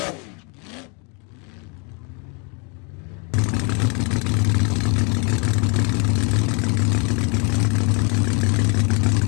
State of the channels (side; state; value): right; quieter; 34.3 dB